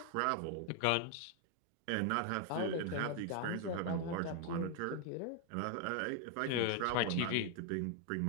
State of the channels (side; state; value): both; different; correlation 0.01